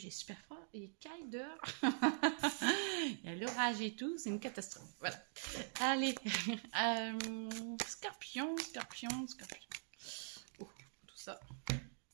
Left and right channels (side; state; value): left; silent; digital silence